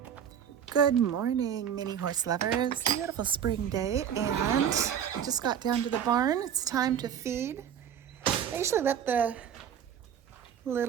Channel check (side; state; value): left; quieter; 8.8 dB